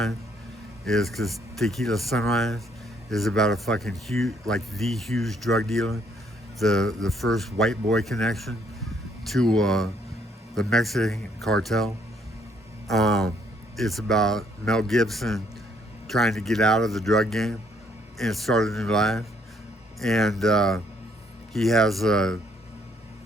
is because Tequila Sunrise is about a fucking huge, like the huge drug dealer, the first white boy connection to the Mexican cartel. It's about Mel Gibson trying to get out of the drug game and start a new life. And he has a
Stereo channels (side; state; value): both; normal; correlation 0.68